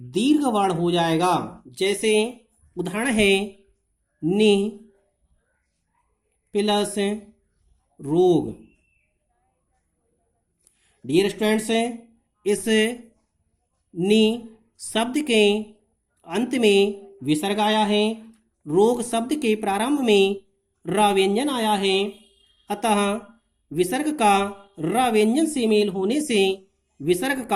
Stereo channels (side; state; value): both; identical; correlation 1.00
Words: वर्ण हो जाएगा। जैसे उदाहरण है नि प्लस रोग। डियर स्टूडेंट्स, इस नि शब्द के अंत में विसर्ग आया है। रोग शब्द के प्रारंभ में र व्यंजन आया है। अतः विसर्ग का र व्यंजन से मेल होने से विसर्ग